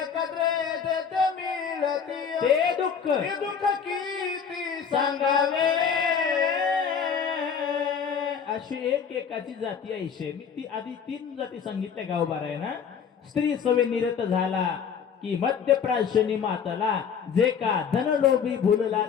ते दुःख किती सांगावे. अशी एकाची जाती आहे. मी ती आधी 3 जाती सांगितल्या गावबारा आहे ना. स्त्री सवे निरत झाला की मध्यप्राशनी मातला, जे का धनलोभी भुलला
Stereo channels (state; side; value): quieter; right; 7.0 dB